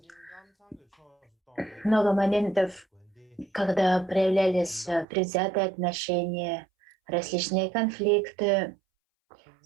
много моментов, когда проявлялись предвзятые отношения, различные конфликты,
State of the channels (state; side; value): drops out; left; at 5.1 s